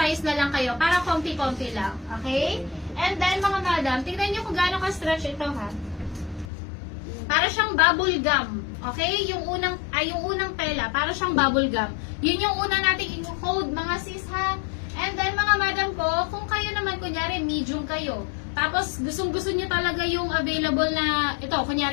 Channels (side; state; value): right; drops out; at 6.5 s